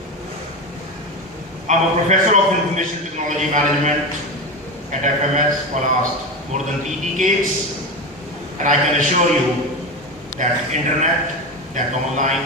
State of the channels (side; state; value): both; normal; correlation 0.21